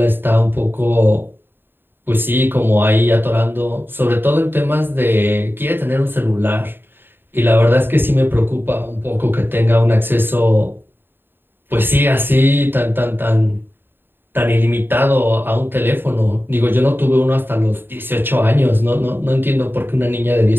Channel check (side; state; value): left; late; 0.099 ms